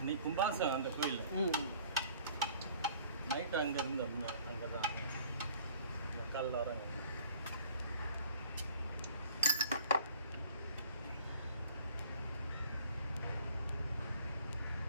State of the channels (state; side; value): inverted; both; correlation -0.53